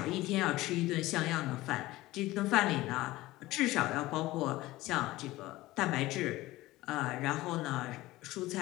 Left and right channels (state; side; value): quieter; right; 18.0 dB